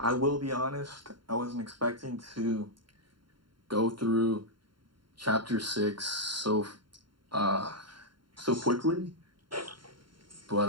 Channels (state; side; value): late; left; 0.72 ms